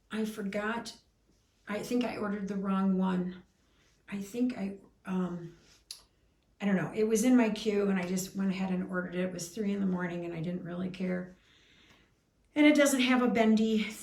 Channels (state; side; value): identical; both; correlation 1.00